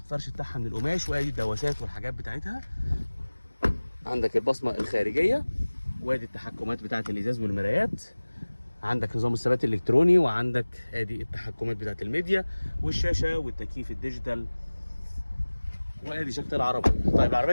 فرش بتاعها من القماش، وادي الدواسات والحاجات بتاعتها. عندك البصمه الخارجيه، وادي التحكمات بتاعه الازاز والمرايات. عندك نظام الثبات الالكتروني، وعندك ادي التحكمات بتاعه الميديا والشاشه والتكييف الديجيتال، وادي شكل العربيه. طيب العربيه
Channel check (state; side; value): inverted; both; correlation -1.00